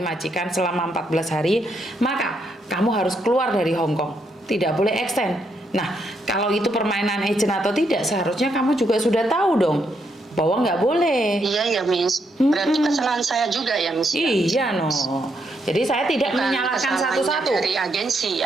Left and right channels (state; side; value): normal; both; correlation 0.77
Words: majikan selama 14 hari, maka kamu harus keluar dari Hong Kong. Tidak boleh extend. Nah, kalau itu permainan agent atau tidak, seharusnya kamu juga sudah tahu dong bahwa nggak boleh. Iya ya Miss. Berarti kesalahan saya juga ya Miss. Iya no. Jadi saya tidak menyalahkan satu-satu. Dari agensi